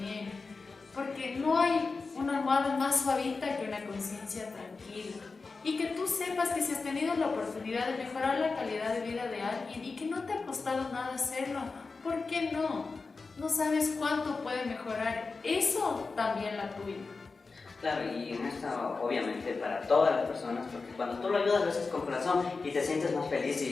porque no hay una almohada más suavita que una conciencia tranquila. Y que tú sepas que si has tenido la oportunidad de mejorar la calidad de vida de alguien y que no te ha costado nada hacerlo, ¿por qué no? No sabes cuánto puede mejorar eso también la tuya. Claro, y en esto obviamente para todas las personas, porque cuando tú lo ayudas lo haces con corazón y te sientes más feliz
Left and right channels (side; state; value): right; quieter; 4.2 dB